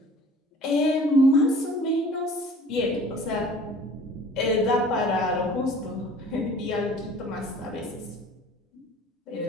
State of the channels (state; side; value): normal; both; correlation 0.48